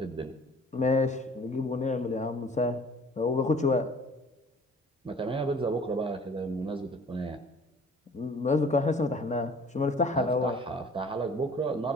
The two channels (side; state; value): both; normal; correlation 0.50